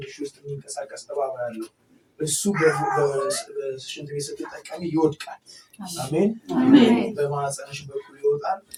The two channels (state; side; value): identical; both; correlation 1.00